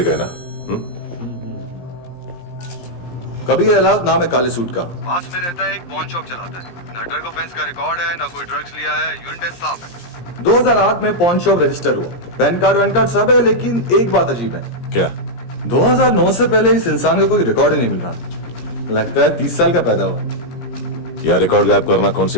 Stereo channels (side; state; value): right; late; 17 ms